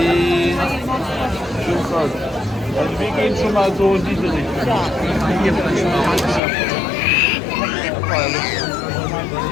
Also wir gehen schon mal so in diese Richtung. Ja. Hier vielleicht schon mal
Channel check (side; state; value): right; drops out; at 6.4 s